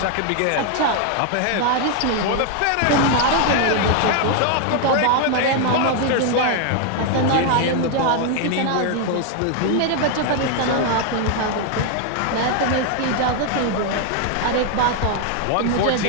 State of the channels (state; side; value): different; both; correlation 0.01